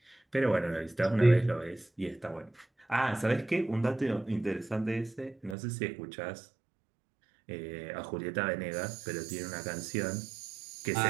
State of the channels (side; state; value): left; drops out; at 5.6 s